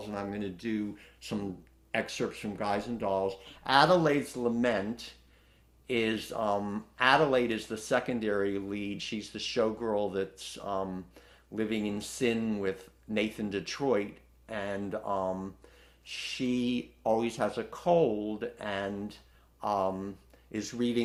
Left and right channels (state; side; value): identical; both; correlation 1.00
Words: and I'm going to do some excerpts from Guys and Dolls. Adelaide's Lament is Adelaide is the secondary lead. She's the showgirl that's living in sin with Nathan Detroit, and she always has a cold and is